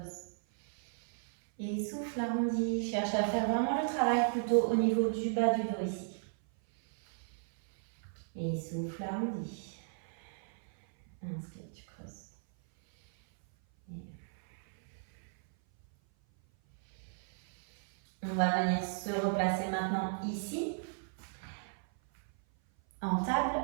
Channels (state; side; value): silent; left; 55 dB below the other